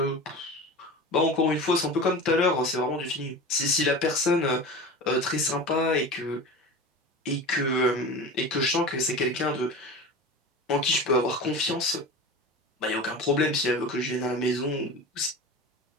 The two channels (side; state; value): both; normal; correlation 0.32